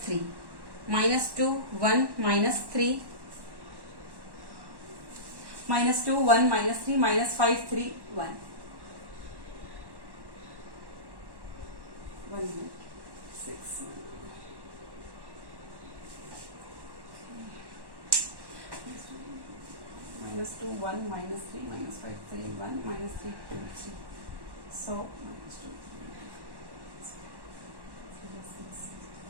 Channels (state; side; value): late; left; 1.1 ms